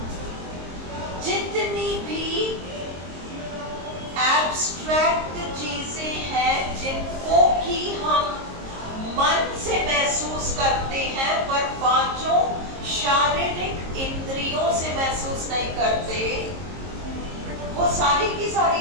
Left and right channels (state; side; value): late; left; 22 ms